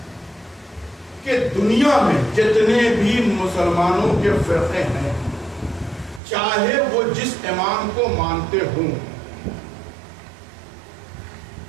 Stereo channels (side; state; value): left; drops out; at 6.2 s